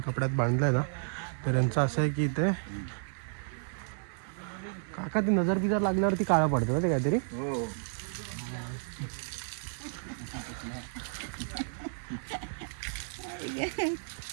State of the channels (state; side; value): silent; left; 56 dB below the other